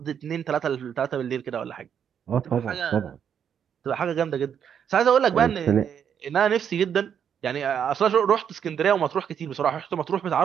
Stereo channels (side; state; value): left; quieter; 8.3 dB